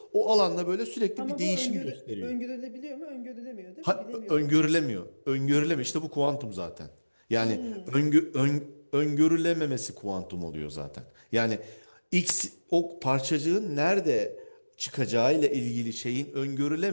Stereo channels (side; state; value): both; inverted; correlation -1.00